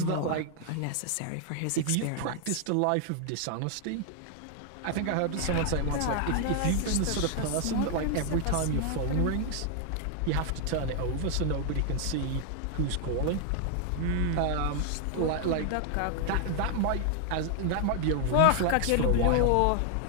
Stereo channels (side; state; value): both; different; correlation 0.00